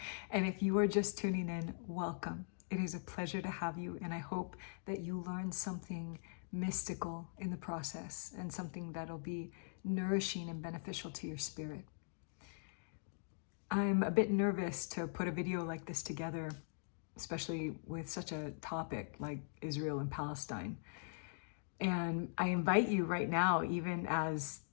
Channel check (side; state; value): right; silent; digital silence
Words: And if you are just tuning in, welcome. It is a pleasure to have you, and I hope that you learn something mystical in the process and something that'll be nourishing and beneficial to your spirit. I'm a bit nervous to put a video like this together, especially with such a topic like Israel and Palestine. And I invite you right now, even as